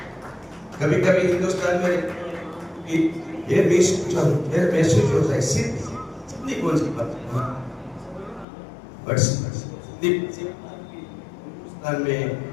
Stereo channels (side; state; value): right; drops out; at 8.5 s